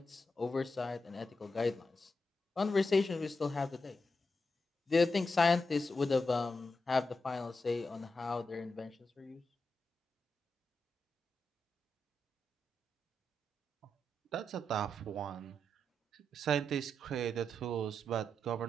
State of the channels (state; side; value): normal; both; correlation 0.86